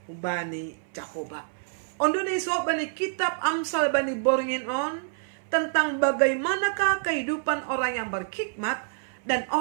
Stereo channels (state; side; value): silent; left; 60 dB below the other